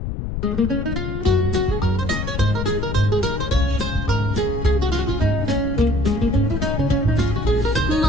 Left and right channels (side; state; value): left; noise; rumble, 4 dB below the sound